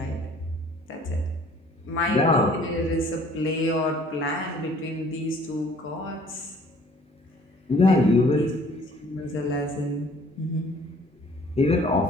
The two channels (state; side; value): normal; both; correlation 0.55